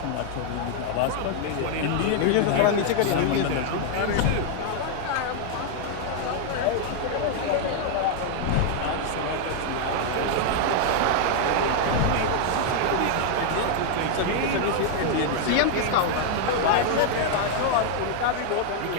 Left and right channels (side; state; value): both; different; correlation 0.00